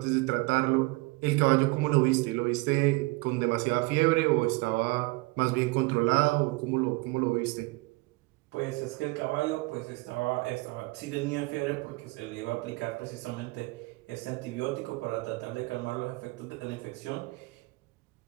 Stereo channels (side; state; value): left; quieter; 24.5 dB